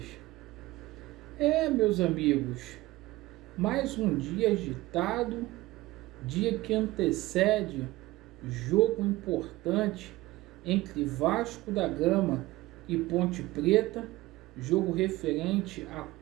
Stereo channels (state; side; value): quieter; left; 18.8 dB